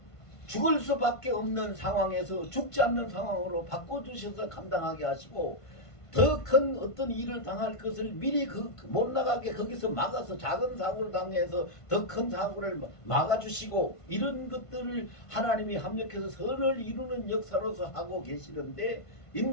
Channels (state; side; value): late; right; 1.5 ms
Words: 죽을 수밖에 없는 상황에서 죽지 않는 상황으로 바꿔주셔서 감당하게 하시고 더 큰 어떤 일을 당할 것을 미리 못 나가게 거기서 막아서 작은 사고를 당해서 더 큰 사고를 막아주시고 이런 것들을 하나님이 합력해서 선을 이루는 역사로서 하고 계시는데